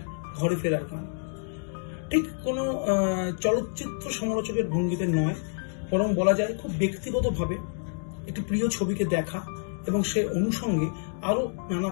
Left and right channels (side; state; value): right; silent; digital silence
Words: ঘরে ফেরার গান। ঠিক কোনো চলচ্চিত্র সমালোচকের ভঙ্গিতে নয়, বরং বলা যায় খুব ব্যক্তিগতভাবে একটি প্রিয় ছবিকে দেখা এবং সে অনুষঙ্গে আরো নানা